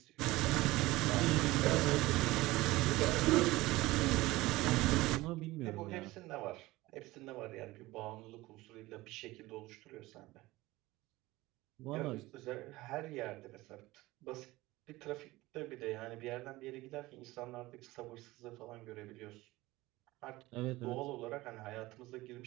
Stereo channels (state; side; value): quieter; left; 19.2 dB